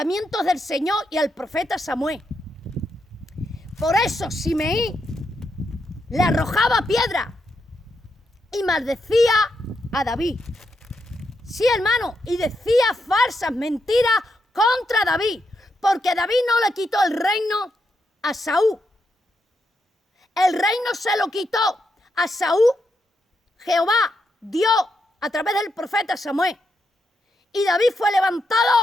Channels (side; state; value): both; normal; correlation 0.82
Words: del Señor y al profeta Samuel. Por eso Simeí le arrojaba piedra y maldecía a David. Sí, hermano, y decía falsas mentiras contra David, porque David no le quitó el reino a Saúl. El reino se lo quitó a Saúl, Jehová, Dios, a través del profeta Samuel. Y David fue